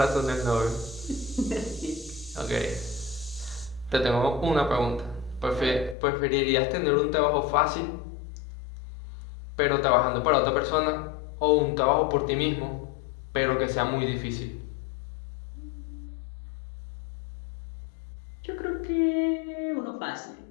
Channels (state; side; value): drops out; right; at 6.0 s